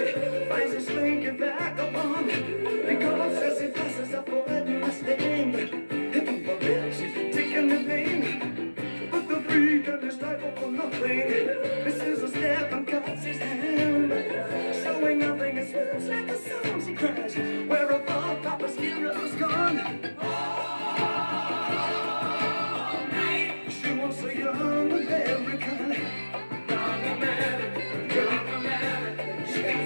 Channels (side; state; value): both; inverted; correlation -1.00